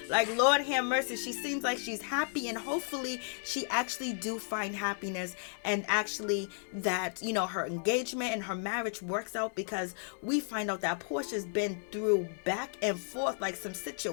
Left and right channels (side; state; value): right; silent; digital silence